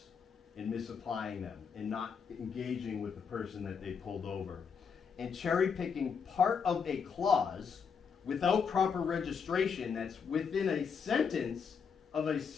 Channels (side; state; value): right; quieter; 6.3 dB